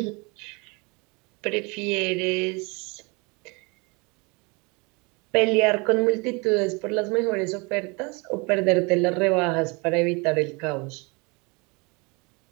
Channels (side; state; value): left; quieter; 29.0 dB